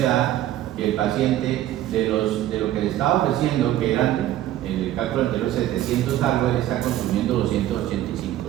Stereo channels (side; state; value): left; quieter; 13.3 dB